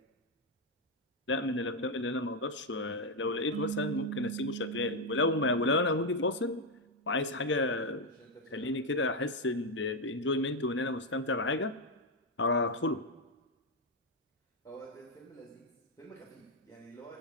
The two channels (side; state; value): both; normal; correlation 0.03